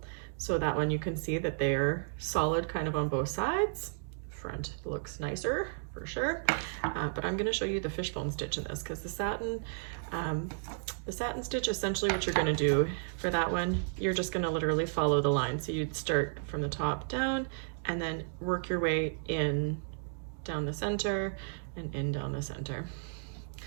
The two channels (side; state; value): left; silent; digital silence